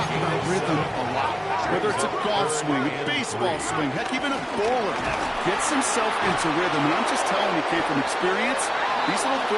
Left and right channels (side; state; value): both; identical; correlation 1.00